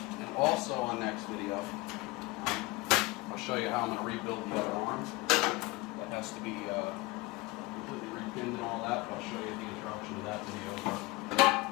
And also on next video, I'll show you how I'm going to rebuild the other arm. That has to be completely repinned and all that, but I'll show you the introduction to that video.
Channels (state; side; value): quieter; right; 22.0 dB